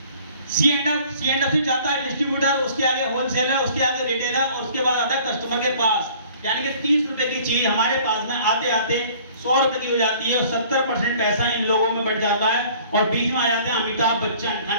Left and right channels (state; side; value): inverted; both; correlation -0.52